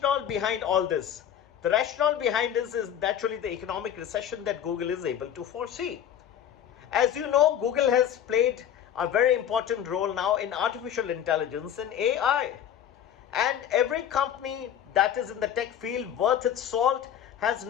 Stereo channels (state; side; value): quieter; right; 9.8 dB